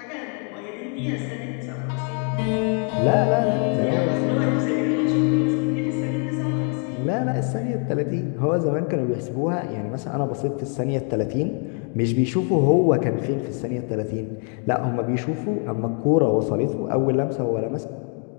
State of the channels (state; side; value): quieter; right; 39.0 dB